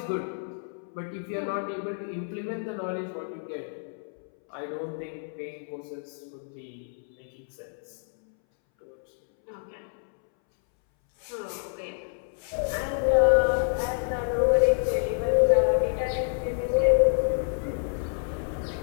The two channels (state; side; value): silent; right; 59 dB below the other